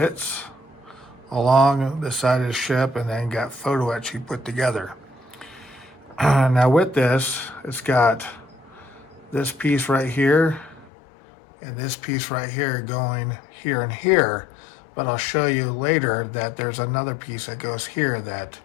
along the side of the ship and then got photo etch you put together. Now with this, it's got this piece right here and this piece right here going here and here, but I'll show you later that there's another piece that goes here that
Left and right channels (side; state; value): right; drops out; at 10.9 s